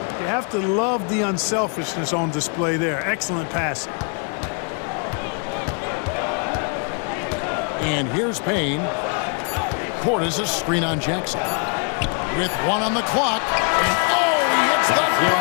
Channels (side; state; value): right; quieter; 39.6 dB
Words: You have to love the unselfishness on display there. Excellent passing. And here's Payne. Portis a screen on Jackson. With 1 on the clock. And oh, he hits the